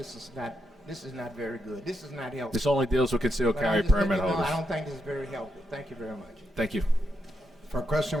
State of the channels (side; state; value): both; normal; correlation 0.83